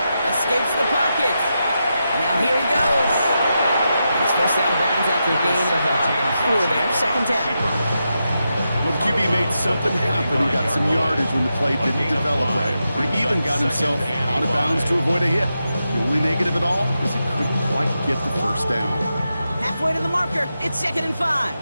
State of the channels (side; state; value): both; inverted; correlation -0.87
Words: Escapes the pocket. Now here he goes. He's first out of bounds after a gain of 4 there. Second down. Well, the QB made something happen and got some yardage when the play didn't develop right. He even got himself out of bounds to avoid a hit. The only negative at all is he couldn't quite get the first down. Halfway to the marker. It's 2nd and 5.